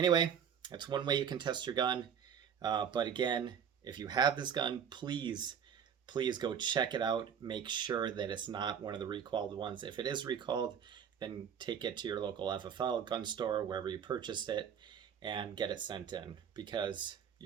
that's one way you can test your gun. But again, if you have this gun, please go check it out. Make sure that it's not one of the recalled ones. If it is recalled, then take it to your local FFL gun store, wherever you purchased it, and get it sent in, because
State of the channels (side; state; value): left; quieter; 8.0 dB